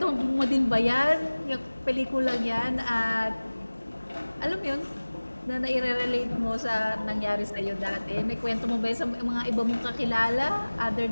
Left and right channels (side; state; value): both; inverted; correlation -1.00